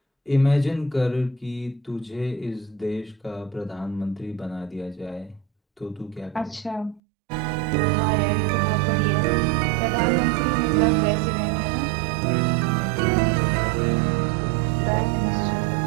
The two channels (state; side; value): drops out; left; at 7.0 s